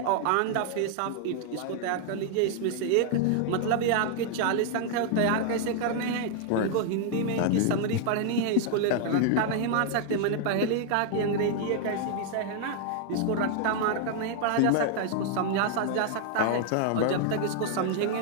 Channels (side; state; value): both; different; correlation 0.00